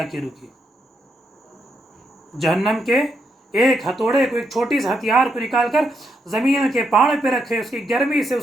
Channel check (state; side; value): normal; both; correlation 0.80